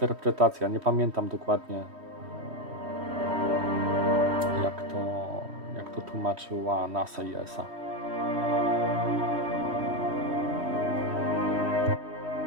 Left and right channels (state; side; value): late; left; 3.1 ms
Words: Nie pamiętam dokładnie, jak to tłumaczyła NASA i ESA.